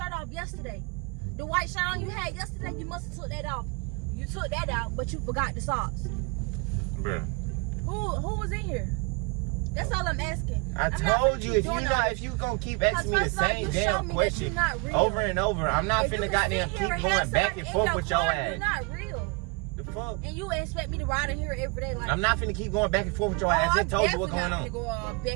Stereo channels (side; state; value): left; quieter; 30.0 dB